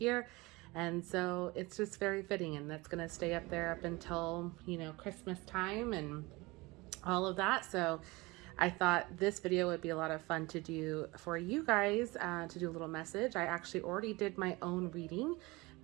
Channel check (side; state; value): left; quieter; 23.0 dB